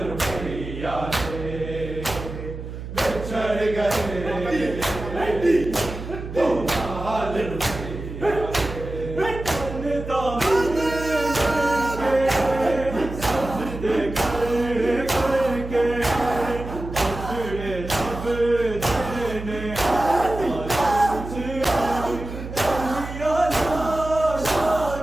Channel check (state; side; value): noise; right; hum, 9 dB below the sound